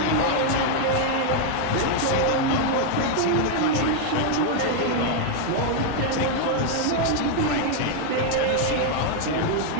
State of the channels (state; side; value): different; both; correlation 0.00